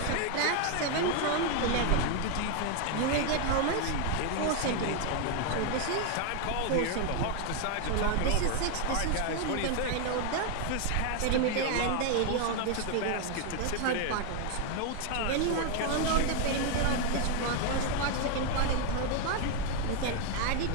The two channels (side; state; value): both; different; correlation 0.01